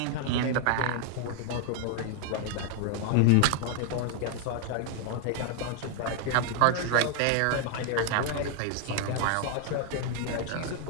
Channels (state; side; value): different; both; correlation 0.00